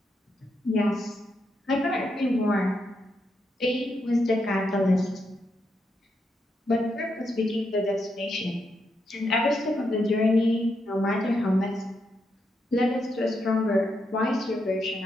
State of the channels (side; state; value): both; normal; correlation 0.81